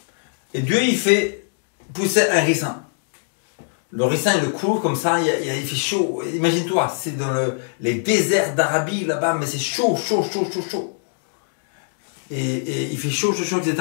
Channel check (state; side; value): silent; right; digital silence